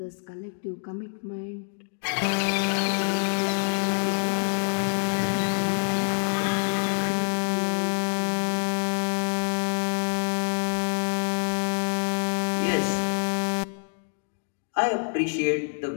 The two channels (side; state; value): right; silent; digital silence